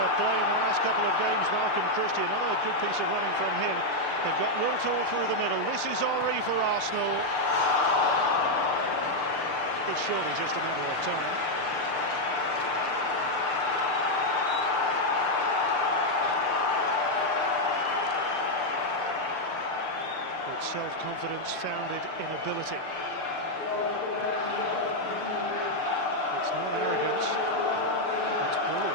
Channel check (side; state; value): right; late; 6.7 ms